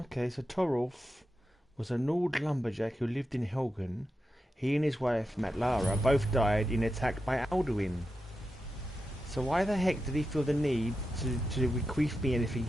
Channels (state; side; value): normal; both; correlation 0.89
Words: so Torolf was a Nord lumberjack who lived in Helgen. He and his wife, Matlara, both died in an attack by Alduin. So why the heck did he feel the need to bequeath me anything